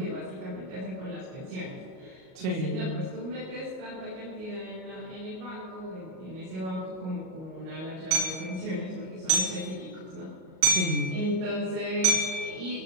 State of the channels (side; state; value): left; late; 38 ms